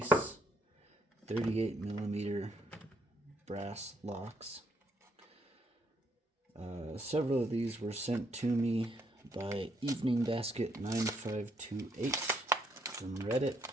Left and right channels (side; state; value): both; normal; correlation 0.72